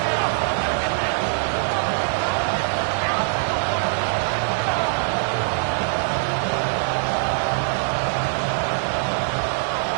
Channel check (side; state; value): left; silent; digital silence